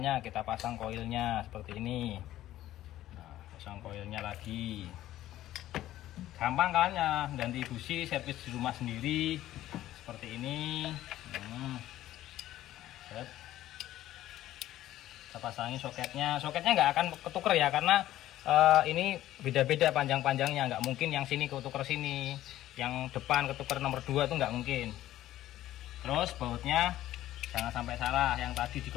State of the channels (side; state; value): right; quieter; 13.9 dB